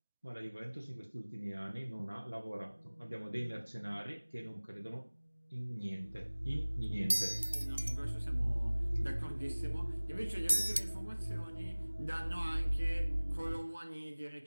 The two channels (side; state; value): both; inverted; correlation -1.00